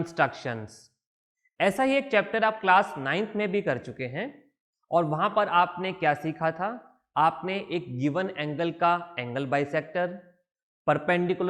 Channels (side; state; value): both; identical; correlation 1.00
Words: ऐसा ही एक चैप्टर आप क्लास 9th में भी कर चुके हैं और वहां पर आपने क्या सीखा था। आपने एक गिवन एंगल का angle bisector,